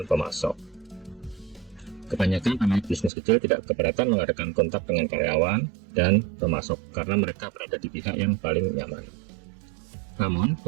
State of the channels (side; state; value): left; drops out; at 3.1 s